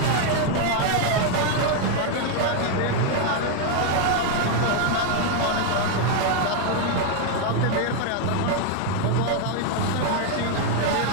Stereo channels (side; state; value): both; different; correlation 0.00